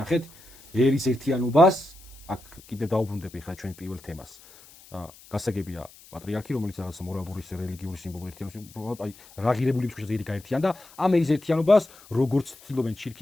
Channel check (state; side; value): noise; left; hiss, 23 dB below the sound